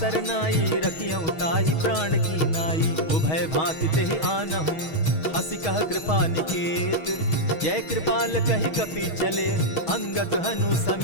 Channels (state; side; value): late; right; 6.3 ms